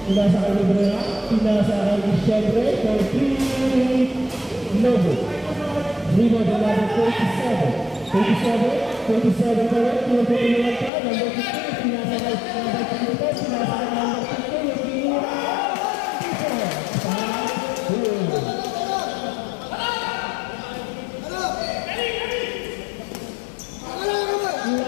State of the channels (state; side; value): drops out; right; at 10.9 s